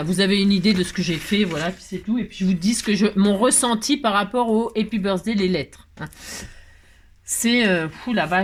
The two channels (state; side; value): identical; both; correlation 1.00